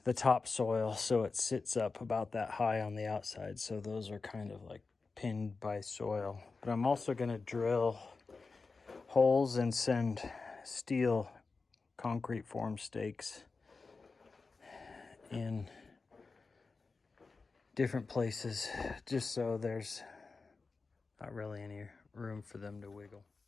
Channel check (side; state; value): right; quieter; 4.2 dB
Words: topsoil so it sits up about that high on the outside. So those are kind of like pinned by soil. But I'm also going to drill holes and send steel concrete form stakes in different places, just so there's not really any room for them to wiggle.